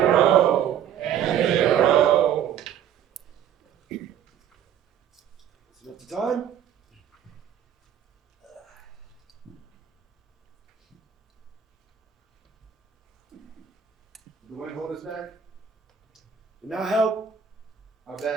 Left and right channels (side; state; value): left; quieter; 9.1 dB